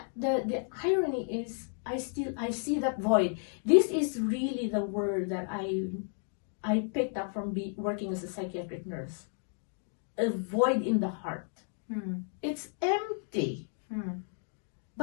the irony is, I see that void. This is really the word that I picked up from working as a psychiatric nurse. A void in the heart. It's empty.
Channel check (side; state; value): right; silent; 56 dB below the other